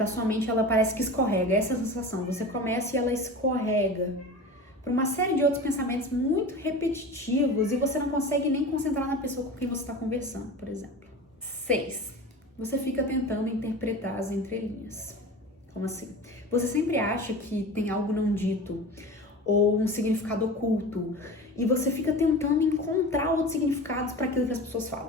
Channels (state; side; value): normal; both; correlation 0.33